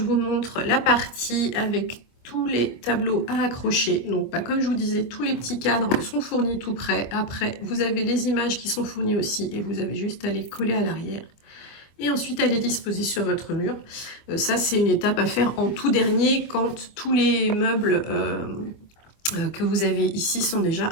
vous montre la partie avec tous les tableaux à accrocher. Donc, comme je vous disais, tous les petits cadres sont fournis tout prêts. Après, vous avez les images qui sont fournies aussi et vous avez juste à les coller à l'arrière. Et ensuite, à les disposer sur votre mur. Ça, c'est une étape à faire en tout dernier quand tous les meubles que vous avez ici sont déjà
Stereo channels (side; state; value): right; late; 25 ms